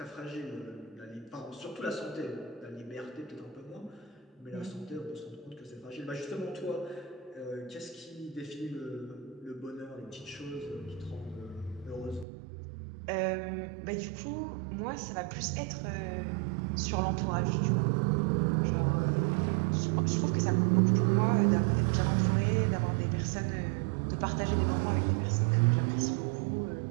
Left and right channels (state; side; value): drops out; left; at 12.2 s